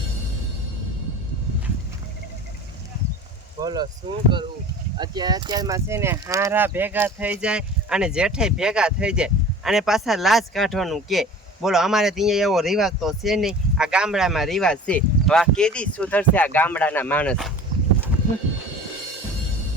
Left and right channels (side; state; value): both; normal; correlation 0.41